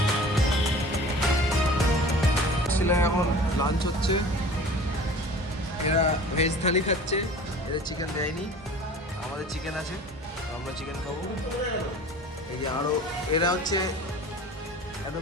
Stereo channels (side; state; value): both; normal; correlation 0.42